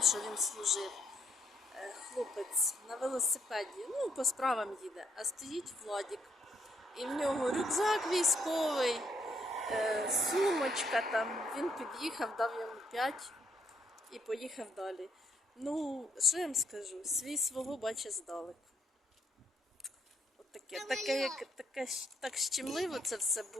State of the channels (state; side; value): normal; both; correlation 0.73